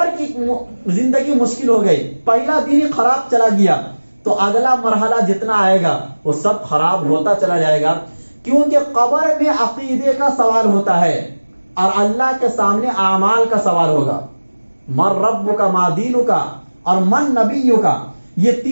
کی زندگی مشکل ہو گئی، پہلا دن ہی خراب چلا گیا، تو اگلا مرحلہ جتنا آئے گا وہ سب خراب ہوتا چلا جائے گا، کیونکہ قبر میں عقیدے کا سوال ہوتا ہے اور اللہ کے سامنے اعمال کا سوال ہوگا۔ من رب کا، ما دین کا اور من نبی کا، یہ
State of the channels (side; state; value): both; inverted; correlation -1.00